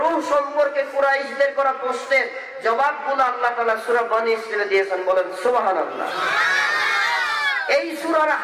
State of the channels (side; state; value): both; identical; correlation 1.00